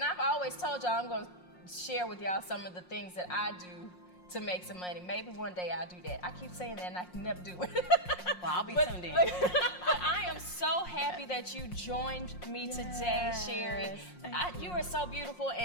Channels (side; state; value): right; late; 5.6 ms